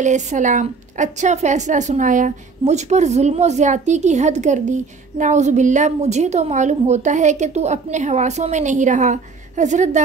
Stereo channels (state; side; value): quieter; left; 4.7 dB